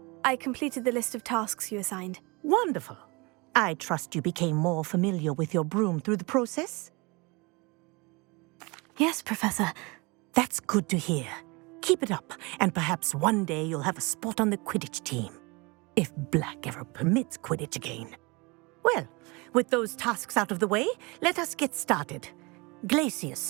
I completed the list of tasks you assigned. Wonderful. I trust you became more familiar with your broom through the process? Yes, Professor. That's good to hear. Keep it up, and perhaps one day you'll have a spot on the Quidditch team. If Black ever permits Quidditch again. Well, with those tasks out of the way, let us get started.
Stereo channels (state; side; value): quieter; left; 26.7 dB